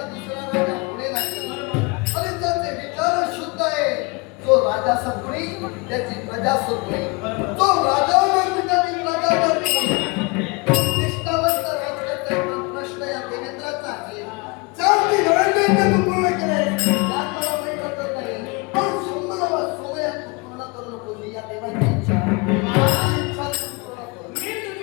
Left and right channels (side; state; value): right; quieter; 28.3 dB